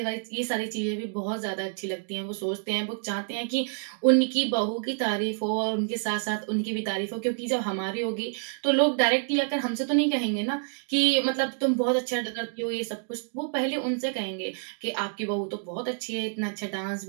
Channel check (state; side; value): silent; left; digital silence